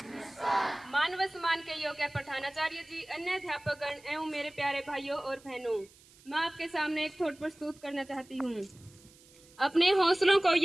मानव सम्मान के योग्य प्रधानाचार्य जी, अन्य अध्यापकगण एवं मेरे प्यारे भाइयों और बहनों, मैं आपके सामने एक थॉट प्रस्तुत करना चाहती हूँ। अपने हौसलों को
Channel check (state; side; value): noise; right; hiss, 26 dB below the sound